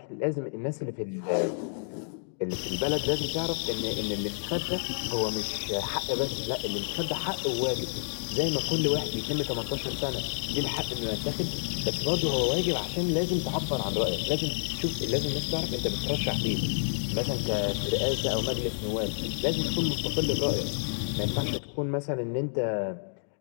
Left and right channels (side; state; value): right; silent; digital silence